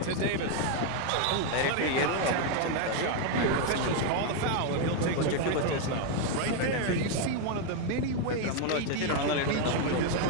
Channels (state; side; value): different; both; correlation 0.01